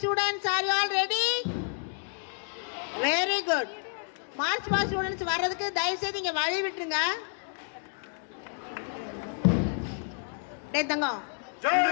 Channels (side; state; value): right; silent; 58 dB below the other